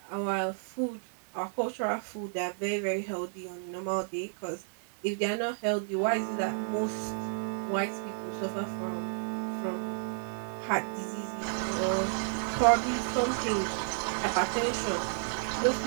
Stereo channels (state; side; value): silent; left; digital silence